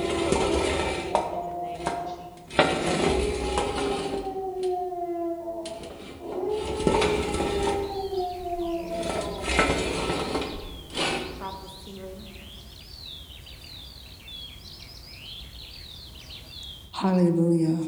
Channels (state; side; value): identical; both; correlation 1.00